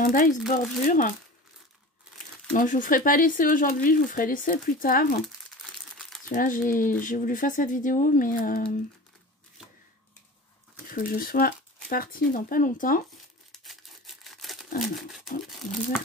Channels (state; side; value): normal; both; correlation 0.36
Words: dies bordure. Donc je vous ferai pas l'essai aujourd'hui, je vous ferai l'essai plus tard. Parce que là j'ai voulu faire cette vidéo, mais il faut que je sois partie dans pas longtemps. Alors, hop, on va faire